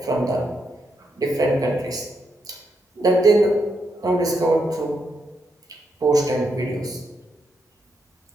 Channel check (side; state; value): both; normal; correlation 0.81